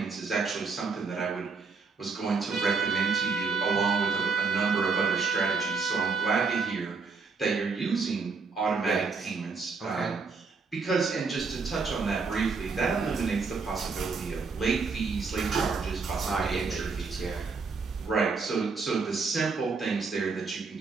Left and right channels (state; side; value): quieter; left; 4.7 dB